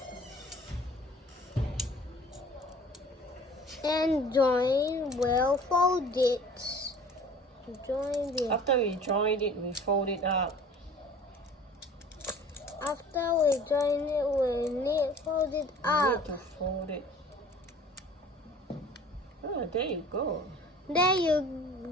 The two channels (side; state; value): both; normal; correlation 0.47